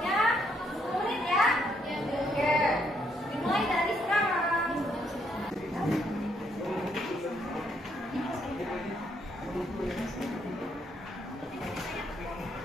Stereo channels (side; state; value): both; normal; correlation 0.73